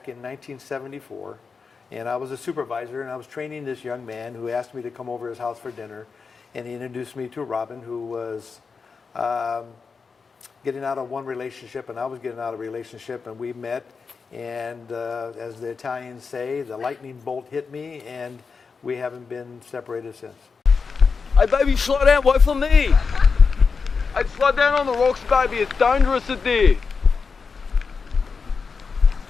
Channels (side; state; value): right; quieter; 5.1 dB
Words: in 1974, and I was a supervisor, and I was training this young man who asked me to come over to his house for dinner, and he introduced me to Robin, who was getting out of one relationship, and I was getting out of a relationship, and we met, and as the Italians say, the lightning bolt hit me, and we haven't been separated since. Hey, baby, slow down. Wait for me. Hey, slow down on the rocks, baby. It's dangerous in there.